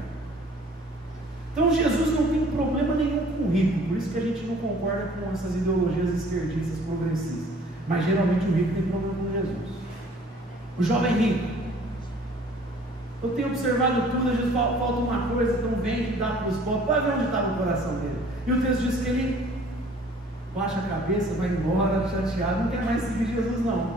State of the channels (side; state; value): both; normal; correlation 0.53